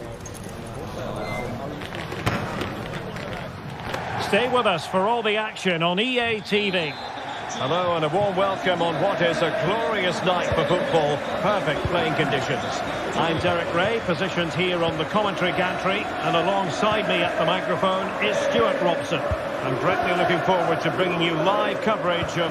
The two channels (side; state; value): both; identical; correlation 1.00